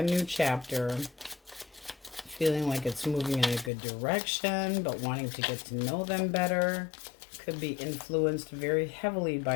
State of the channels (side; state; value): right; drops out; at 3.7 s